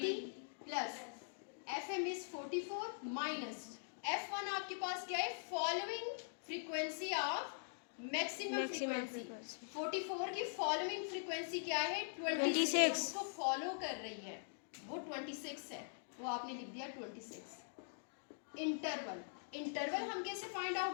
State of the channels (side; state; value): right; silent; digital silence